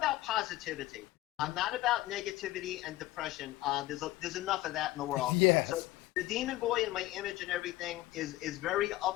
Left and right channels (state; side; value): quieter; right; 16.8 dB